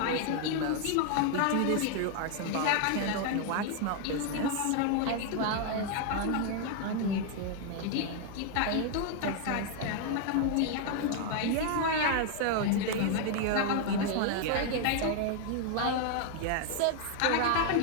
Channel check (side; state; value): both; different; correlation 0.00